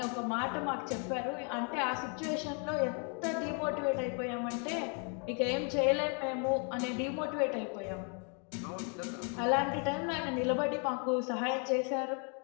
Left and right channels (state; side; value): quieter; right; 39.2 dB